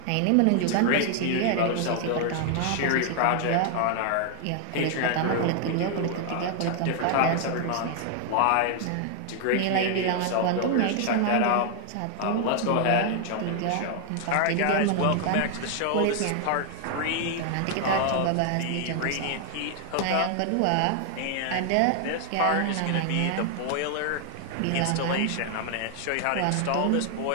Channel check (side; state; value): both; different; correlation 0.00